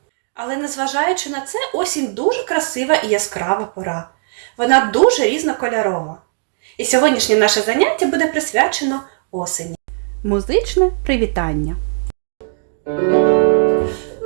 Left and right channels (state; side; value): silent; left; digital silence